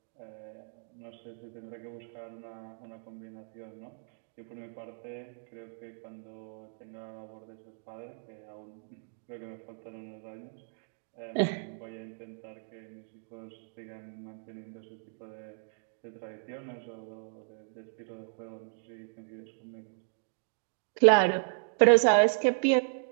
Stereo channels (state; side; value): silent; left; digital silence